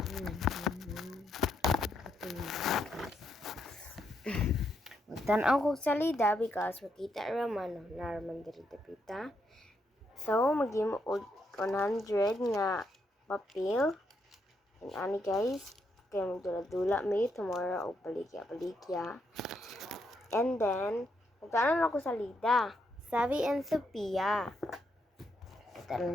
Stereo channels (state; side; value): normal; both; correlation 0.78